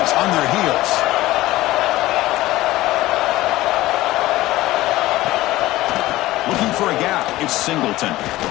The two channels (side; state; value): right; quieter; 17.2 dB